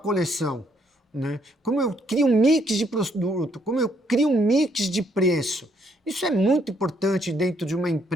né? Como eu crio um mix de produto, como eu crio um mix de preço. Isso é muito importante dentro de uma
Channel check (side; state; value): both; normal; correlation 0.70